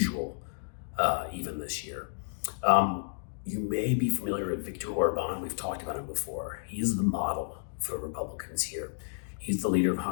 even this year. You may be familiar with Viktor Orban. We've talked about him before. He is the model for Republicans here. He's the leader of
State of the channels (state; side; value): silent; right; digital silence